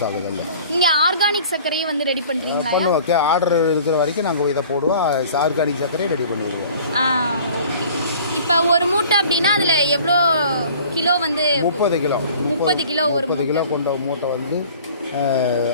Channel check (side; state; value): both; inverted; correlation -0.48